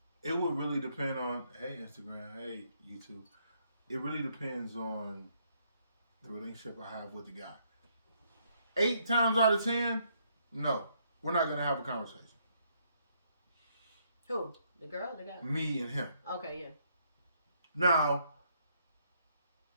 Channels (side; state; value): both; inverted; correlation -0.72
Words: it would really depend on, hey, Instagram, hey, YouTube. It really depends on the relationship I have with the guy. 8 times out of 10, no, we're not going to have a conversation. Who? The girl? The guy? Me and him. Okay, yeah. Now,